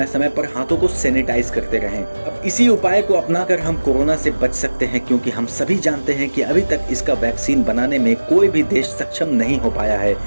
समय पर हाथों को सैनिटाइज करते रहें। अब इसी उपाय को अपनाकर हम कोरोना से बच सकते हैं, क्योंकि हम सभी जानते हैं कि अभी तक इसका वैक्सीन बनाने में कोई भी देश सक्षम नहीं हो पाया है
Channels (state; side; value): inverted; both; correlation -1.00